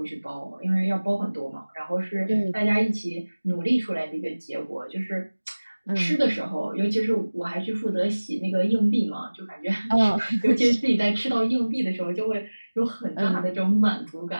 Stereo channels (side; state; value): both; inverted; correlation -1.00